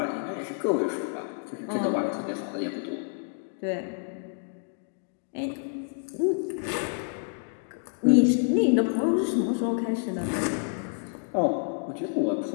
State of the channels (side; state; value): right; silent; 59 dB below the other